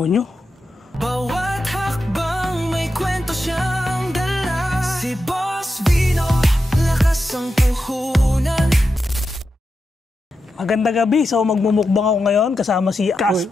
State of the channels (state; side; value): normal; both; correlation 0.89